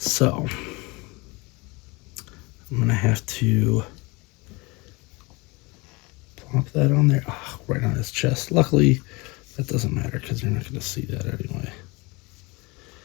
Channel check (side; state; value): right; quieter; 25.7 dB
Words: I'm gonna have to plop that on there. Oh, right on his chest. Luckily, that doesn't matter because you're not gonna see that anyway.